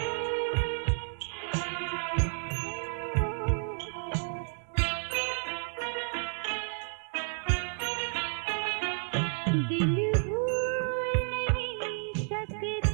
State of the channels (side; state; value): left; silent; 56 dB below the other